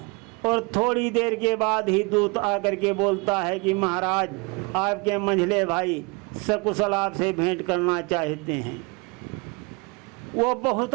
और थोड़ी देर के बाद ही दूत आकर के बोलता है कि महाराज आपके मंझले भाई सकुशल आपसे भेंट करना चाहते हैं। वो बहुत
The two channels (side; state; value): left; quieter; 28.9 dB